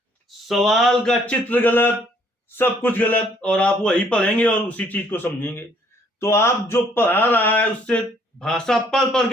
सवाल का चित्र गलत, सब कुछ गलत, और आप वही पढ़ेंगे और उसी चीज को समझेंगे। तो आप जो पढ़ा रहा है उससे भाषा पढ़ पढ़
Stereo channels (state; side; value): normal; both; correlation 0.64